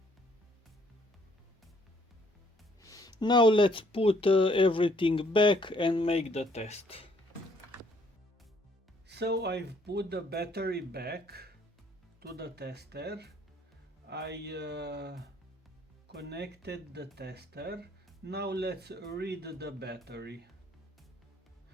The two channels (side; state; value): both; normal; correlation 0.65